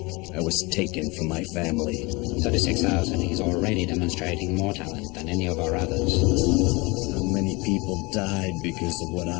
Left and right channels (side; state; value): right; quieter; 25.6 dB